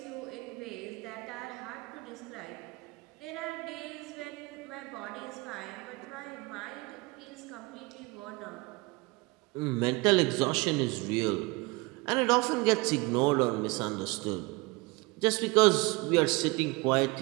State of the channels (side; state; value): left; quieter; 24.9 dB